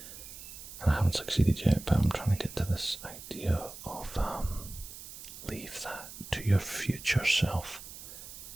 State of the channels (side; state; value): right; noise; hiss, 13 dB below the sound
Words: I haven't succeeded yet, but I'm trying to get to this idea of leave that to your future self.